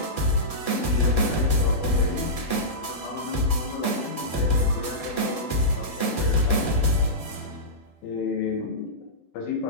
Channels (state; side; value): late; right; 12 ms